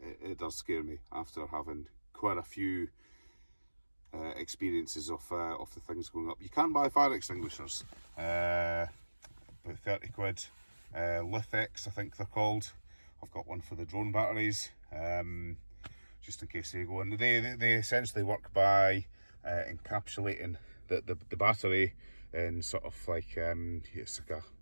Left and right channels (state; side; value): inverted; both; correlation -1.00